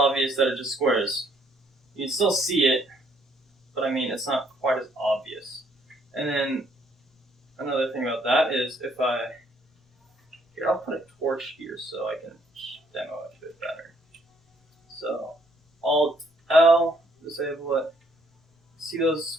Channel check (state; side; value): normal; both; correlation 0.67